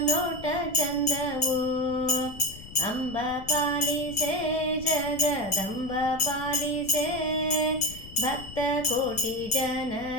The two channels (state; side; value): noise; left; rumble, 15 dB below the sound